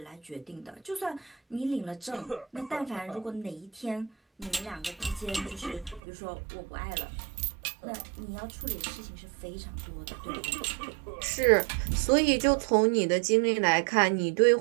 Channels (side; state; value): left; drops out; at 6.0 s